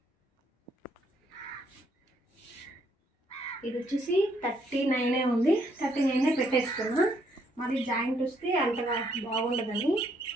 ఇది వచ్చేసి 39 ఉంది. 39 పెట్టేసుకున్నా. మరి జాయింట్ వస్తే అంతగా బాగుండదని.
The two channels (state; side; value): normal; both; correlation 0.71